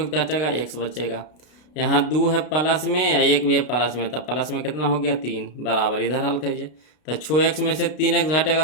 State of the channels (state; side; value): late; right; 33 ms